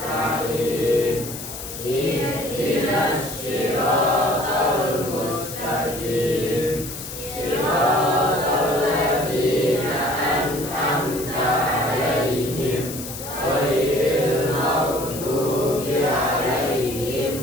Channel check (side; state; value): left; noise; hiss, 10 dB below the sound